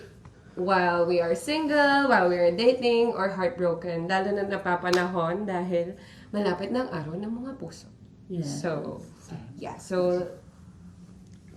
while we are single, while we are dating, or heartbroken. Lalo na napapanahon dahil malapit na ang araw ng mga puso. Yes. So,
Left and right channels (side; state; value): both; identical; correlation 1.00